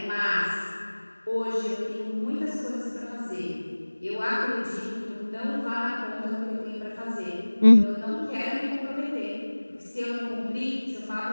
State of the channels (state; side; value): inverted; both; correlation -1.00